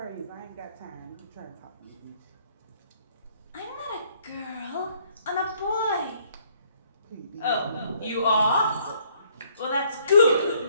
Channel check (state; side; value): inverted; both; correlation -0.65